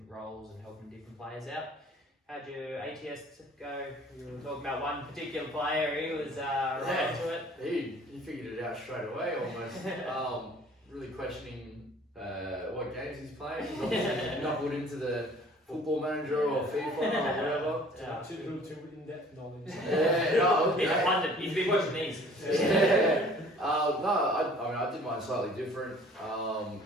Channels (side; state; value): both; normal; correlation 0.52